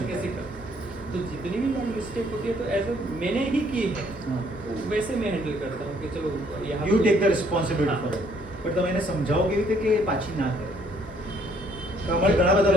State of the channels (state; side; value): normal; both; correlation 0.65